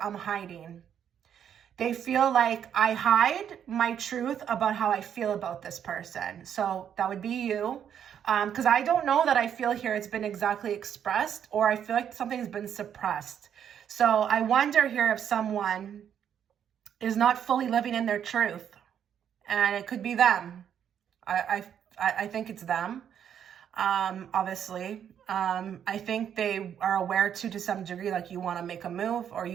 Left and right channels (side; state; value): left; quieter; 8.9 dB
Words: I'm hiding. They feel like I hide my truth about how I feel about this person. So that would be you. Because I don't know that I feel here it's been exactly expressed, or I feel like something's been suppressed. So I wonder here if someone is not fully living in their truth, and it could be them. I think it's them. Obviously, I think they are aware to some degree, like you want to make a move, or